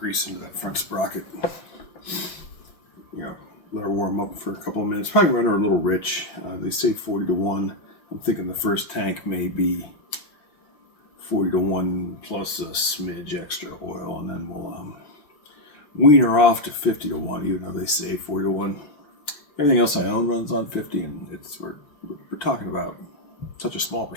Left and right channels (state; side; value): late; right; 5.6 ms